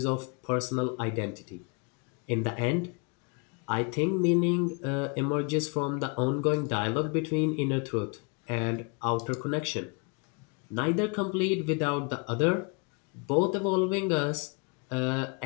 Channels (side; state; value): right; quieter; 33.4 dB